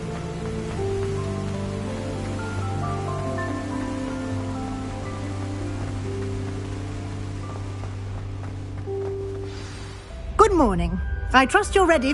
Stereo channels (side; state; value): both; identical; correlation 1.00